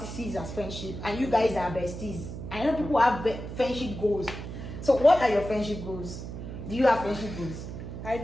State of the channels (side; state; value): right; noise; hum, 9 dB below the sound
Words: sees as friendship, and you guys are besties. I know people have friendship goals. So what are your friendship goals? Do you have friendship goals? I